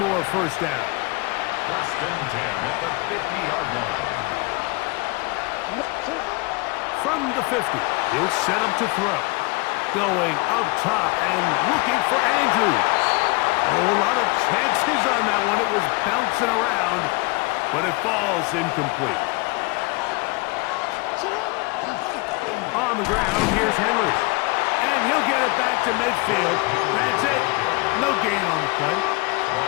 first down. First and 10 at the 50-yard line. From the 50, he'll set up to throw. Going up top and looking for Andrews. Oh, a lot of chances on that one. It was bouncing around, but it falls incomplete. On the ground, here's Henry. And he'll get it back to midfield. That's it. No gain on the play.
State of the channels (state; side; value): quieter; right; 27.0 dB